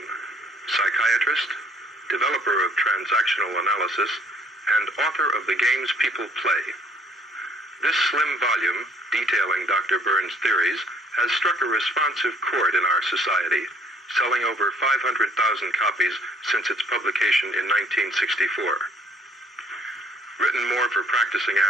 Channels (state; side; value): normal; both; correlation 0.60